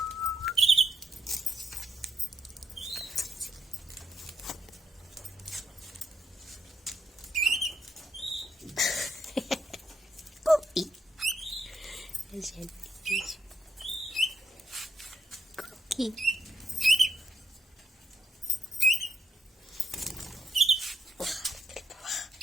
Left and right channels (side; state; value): both; normal; correlation 0.81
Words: كوكي. اجي كوكي.